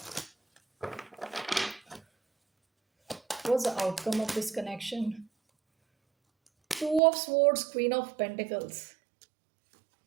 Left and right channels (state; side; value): drops out; left; at 7.0 s